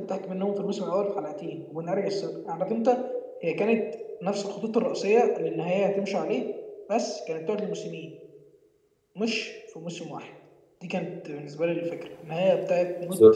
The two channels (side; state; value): both; identical; correlation 1.00